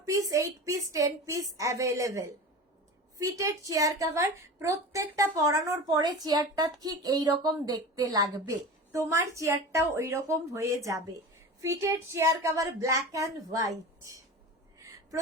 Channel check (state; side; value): normal; both; correlation 0.32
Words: piece, 8 piece, 10 piece available. Fitted chair cover, প্রত্যেকটা পরানোর পরে চেয়ারটা ঠিক এইরকম দেখতে লাগবে, তোমার চেয়ারটাও ওইরকম হয়ে যাবে। Fitted chair cover black and white,